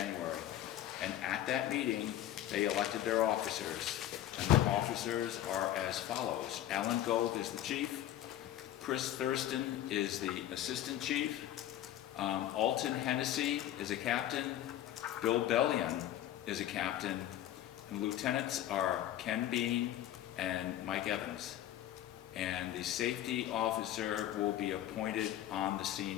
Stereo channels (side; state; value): right; quieter; 12.3 dB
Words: and at that meeting, they elected their officers, and the officers are as follows. Alan Gold is the chief, Chris Thurston is the assistant chief, Alton Hennessy is a captain, Bill Bellion is a captain, and lieutenants are Ken Bean and Mike Evans. And the safety officer will be appointed on the